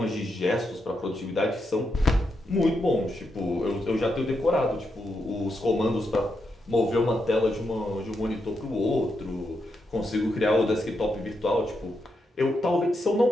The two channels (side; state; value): both; normal; correlation 0.83